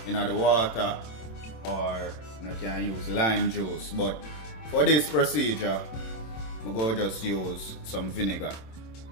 in the water, or you can use lime juice. But for this procedure, I'm going to just use some vinegar.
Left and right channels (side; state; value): right; late; 27 ms